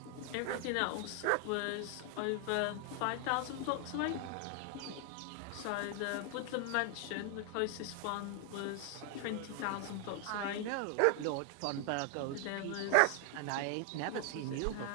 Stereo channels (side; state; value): both; different; correlation 0.00